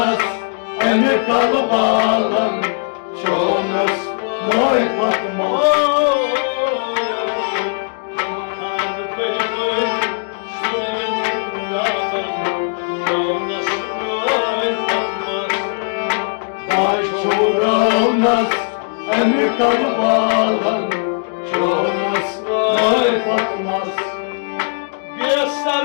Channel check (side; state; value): right; silent; digital silence